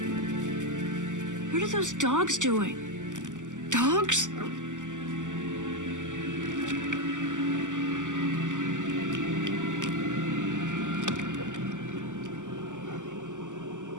What are those dogs doing? Dogs?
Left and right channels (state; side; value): late; left; 0.87 ms